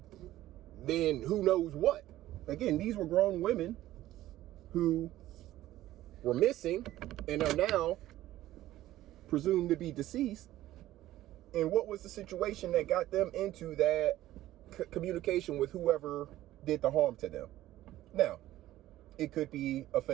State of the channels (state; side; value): quieter; left; 14.7 dB